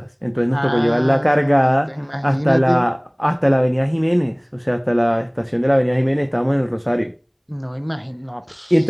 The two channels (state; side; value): identical; both; correlation 1.00